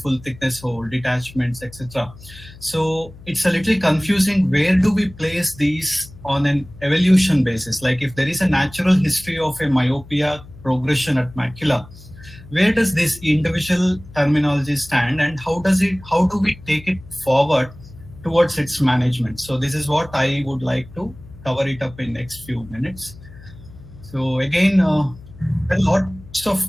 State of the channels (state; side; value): noise; left; hum, 19 dB below the sound